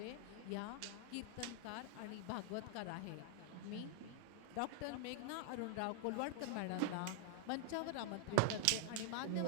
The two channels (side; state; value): both; different; correlation 0.00